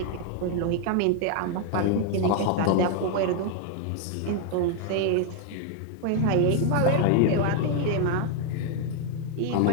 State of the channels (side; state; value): both; different; correlation 0.00